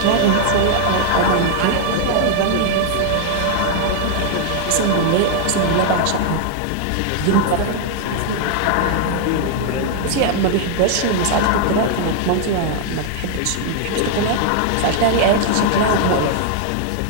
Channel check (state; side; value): different; both; correlation 0.00